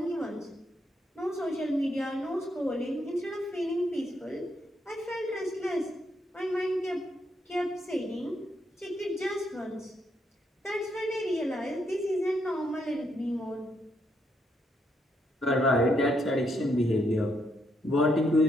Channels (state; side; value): normal; both; correlation 0.76